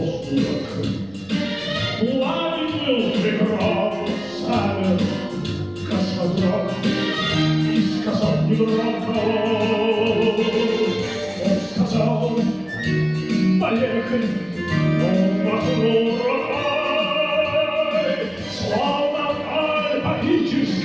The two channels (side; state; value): right; noise; rumble, 27 dB below the sound